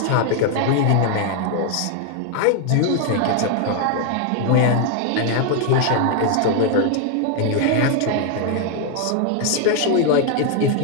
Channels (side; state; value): both; different; correlation 0.00